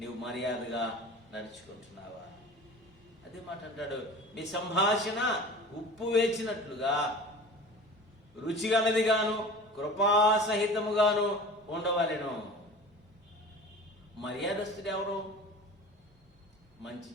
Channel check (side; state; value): both; normal; correlation 0.39